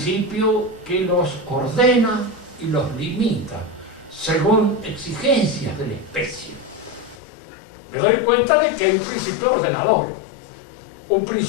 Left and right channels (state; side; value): drops out; right; at 7.2 s